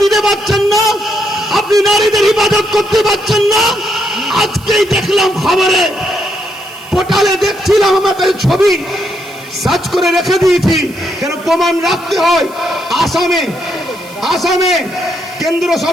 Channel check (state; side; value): noise; right; hiss, 22 dB below the sound